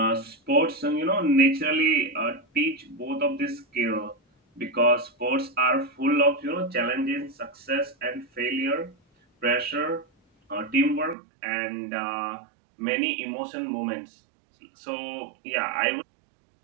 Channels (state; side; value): drops out; left; at 11.2 s